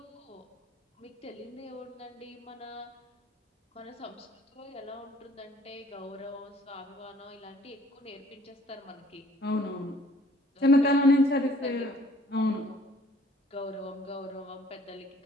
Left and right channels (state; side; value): normal; both; correlation 0.57